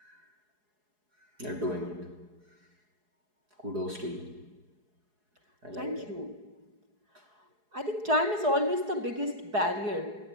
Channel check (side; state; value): left; late; 4.8 ms